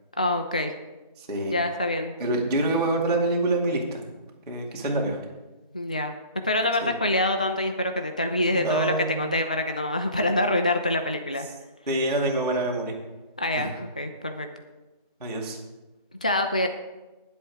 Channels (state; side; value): inverted; both; correlation -0.42